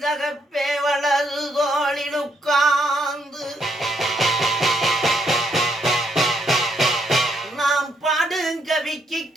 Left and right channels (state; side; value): normal; both; correlation 0.74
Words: தகப்பே வலது தோளில் உட்கார்ந்து நாம் பாடுங்கவிக்கு